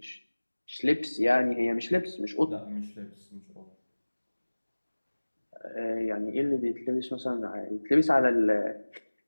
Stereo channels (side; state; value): both; inverted; correlation -1.00